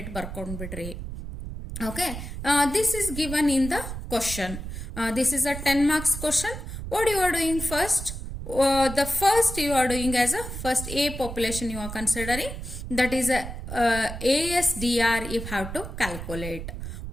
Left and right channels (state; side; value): noise; right; rumble, 8 dB below the sound